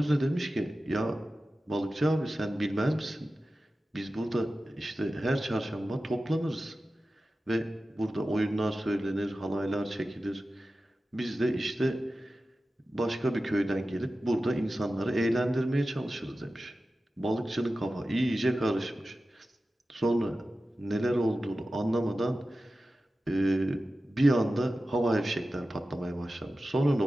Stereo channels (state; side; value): normal; both; correlation 0.94